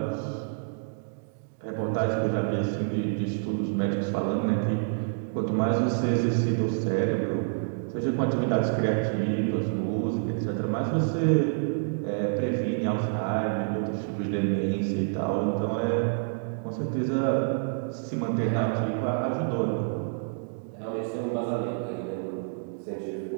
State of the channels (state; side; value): silent; left; digital silence